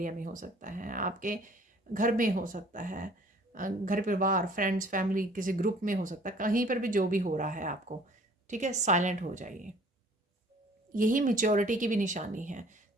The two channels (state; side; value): normal; both; correlation 0.53